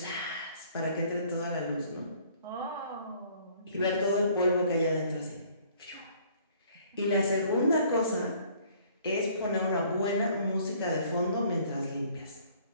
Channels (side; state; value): both; inverted; correlation -0.58